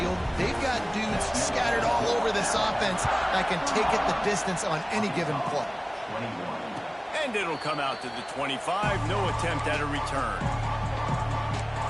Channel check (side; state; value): both; identical; correlation 1.00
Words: They've got dudes scattered all over this offense that can take it the distance on any given play. And it'll come out to the 25. No attempt at a return.